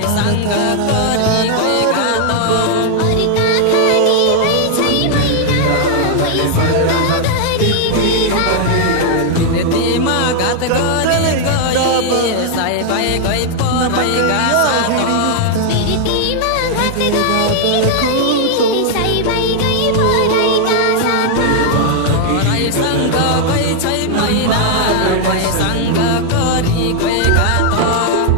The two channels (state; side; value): different; both; correlation 0.00